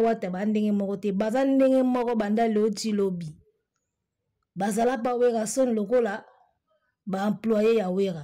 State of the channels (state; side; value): identical; both; correlation 1.00